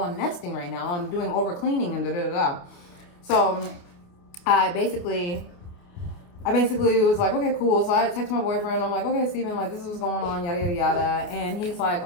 nesting right now. I'm doing over cleaning and da-da-da-da. So I basically was like, okay, cool. So I text my boyfriend. I'm like, okay, Steven, this is what's going on, yada, yada, yada. And he's like,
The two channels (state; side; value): late; right; 28 ms